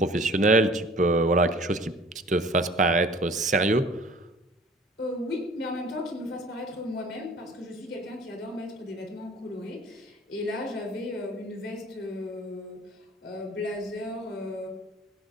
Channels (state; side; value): normal; both; correlation 0.49